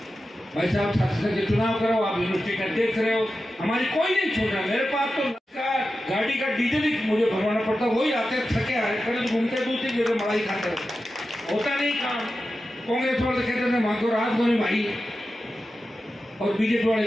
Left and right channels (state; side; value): normal; both; correlation 0.92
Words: भाई साहब, छात्र संघ के चुनाव करो, आप यूनिवर्सिटी का देख रहे हो, हमारी कोई नहीं छोड़ रहा। मेरे पास तो गाड़ी का डीजल ही मुझे भरवाना पड़ता, वही आते थके आ रहे करे घूमते दूसरी जगह मलाई खाते होता नहीं काम। कांग्रेस वाले कहते थे वहां को रात को नहीं भाई, और बीजेपी